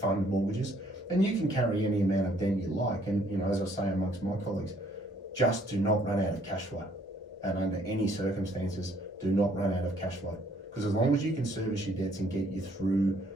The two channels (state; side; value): normal; both; correlation 0.64